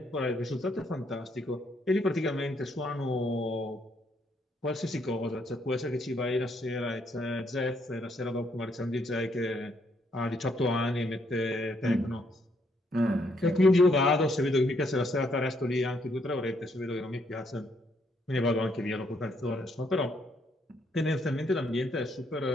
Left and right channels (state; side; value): normal; both; correlation 0.72